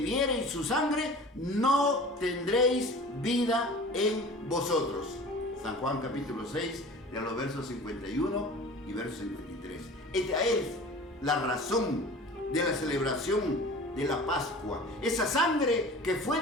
su sangre, no tendréis vida en vosotros. San Juan capítulo 6, de los versos 51 y verso 53. Esta es la razón de la celebración de la Pascua. Esa sangre que fue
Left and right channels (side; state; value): both; normal; correlation 0.40